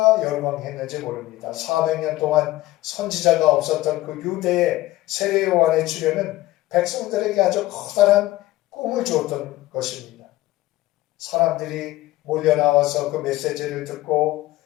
열광했는지 모릅니다. 400년 동안 선지자가 없었던 그 유대의 세례 요한의 출현은 백성들에게 아주 커다란 꿈을 주었던 것입니다. 사람들이 몰려 나와서 그 메시지를 듣고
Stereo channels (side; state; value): right; quieter; 16.9 dB